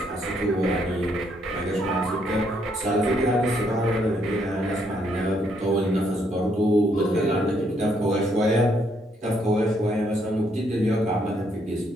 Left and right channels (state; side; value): normal; both; correlation 0.72